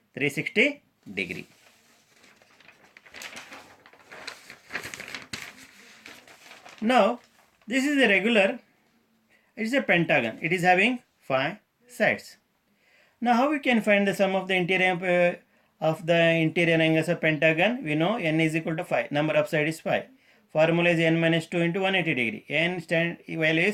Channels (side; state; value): both; identical; correlation 1.00